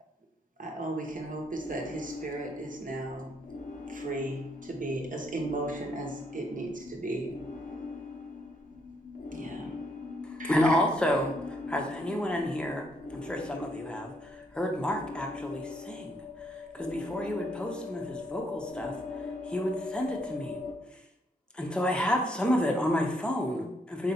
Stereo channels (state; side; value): normal; both; correlation 0.73